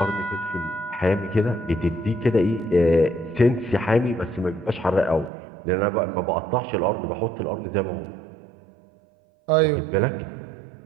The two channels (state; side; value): drops out; left; at 5.3 s